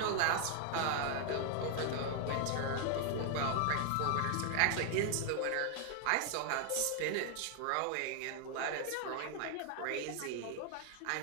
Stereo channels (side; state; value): both; different; correlation 0.00